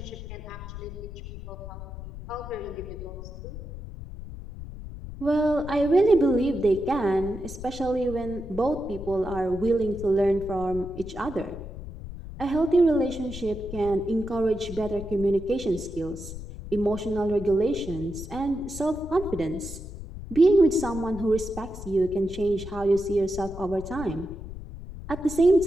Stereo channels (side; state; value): left; noise; rumble, 11 dB below the sound